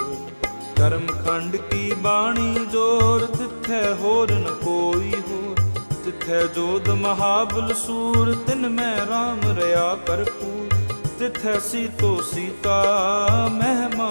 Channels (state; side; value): inverted; both; correlation -1.00